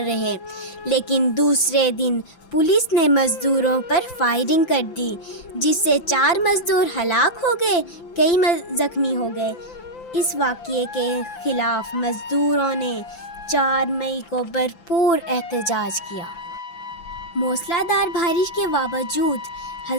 رہے، لیکن دوسرے دن پولیس نے مزدوروں پر فائرنگ کر دی، جس سے 4 مزدور ہلاک ہو گئے، کئی زخمی ہو گئے۔ اس واقعے کے خلاف مزدوروں نے 4 مئی کو بھرپور احتجاج کیا۔ موسلا دھار بارش کے باوجود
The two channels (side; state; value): right; late; 5.9 ms